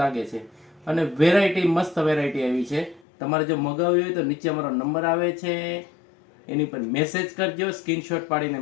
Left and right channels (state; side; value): drops out; right; at 3.1 s